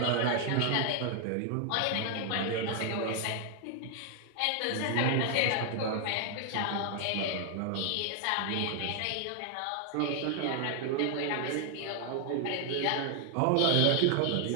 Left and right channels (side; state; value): both; different; correlation 0.00